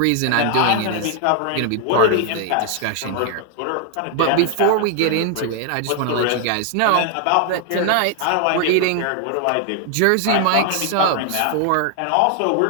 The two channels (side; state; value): both; different; correlation 0.00